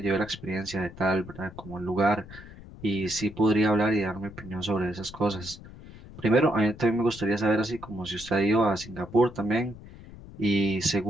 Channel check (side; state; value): left; noise; rumble, 17 dB below the sound